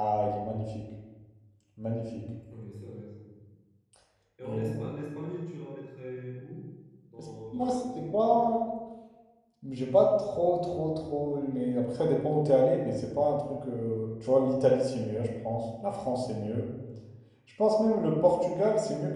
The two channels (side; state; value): both; identical; correlation 1.00